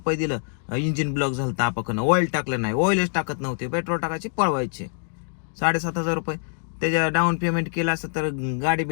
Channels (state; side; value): silent; right; 62 dB below the other